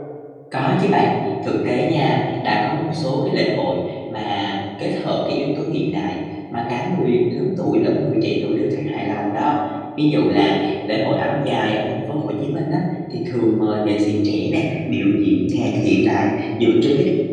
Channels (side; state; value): both; identical; correlation 1.00